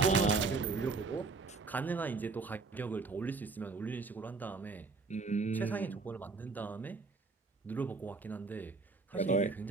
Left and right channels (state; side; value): quieter; left; 4.1 dB